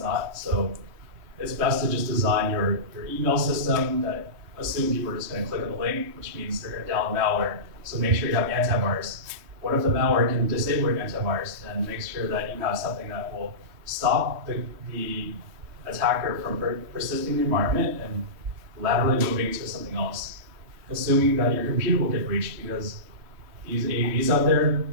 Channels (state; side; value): late; left; 3.2 ms